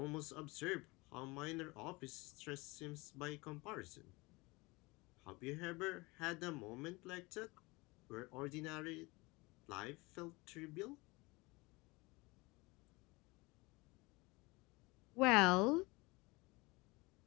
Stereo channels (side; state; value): right; quieter; 24.3 dB